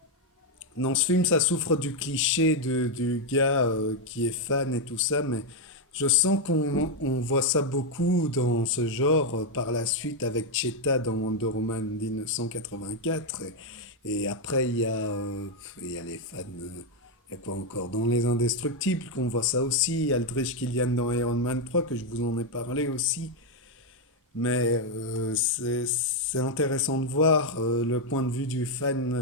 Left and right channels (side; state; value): both; normal; correlation 0.02